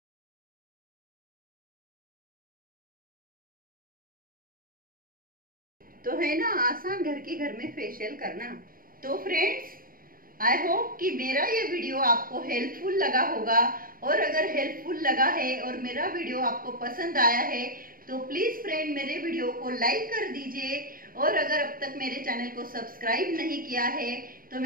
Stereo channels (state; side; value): late; left; 0.41 ms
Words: तो है ना आसान घर में फेशियल करना। तो फ्रेंड्स, आई होप कि मेरा ये वीडियो आपको हेल्पफुल लगा होगा, और अगर हेल्पफुल लगा है और मेरा वीडियो आपको पसंद आया है तो प्लीज फ्रेंड मेरे वीडियो को लाइक कर दीजिए। और अगर अब तक मेरे चैनल को सब्सक्राइब नहीं किया है तो